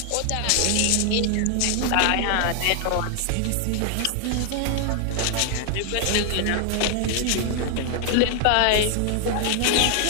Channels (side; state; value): both; different; correlation 0.00